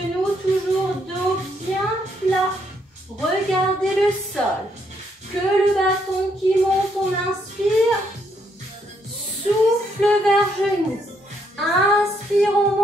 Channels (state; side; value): normal; both; correlation 0.73